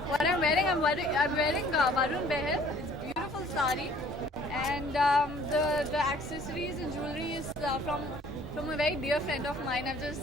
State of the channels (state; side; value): normal; both; correlation 0.55